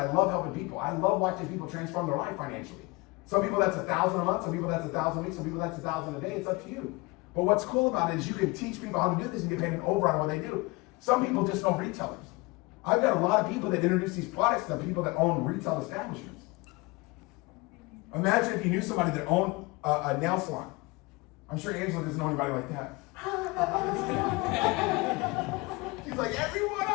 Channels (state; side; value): quieter; right; 24.2 dB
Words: love helping people. I love watching people transform their life financially. Some people that's $1,000 a month, some people that's $1,000 a week, some people that's $1,000 a day. It's up to you. But what's cool about it is you can teach people how to do this and get paid an override on what they do. Some people just know retailers. I've got a lot of people that introduce these products to people that own retail establishments. Imagine if you knew somebody that owned a nail salon. I'm sure Angela doesn't know anybody like that. She's like, every one